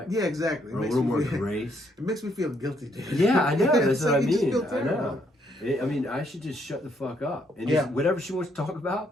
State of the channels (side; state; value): both; normal; correlation 0.72